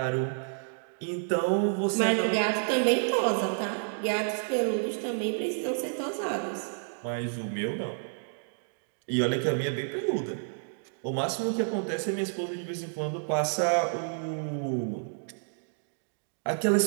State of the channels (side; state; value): left; silent; digital silence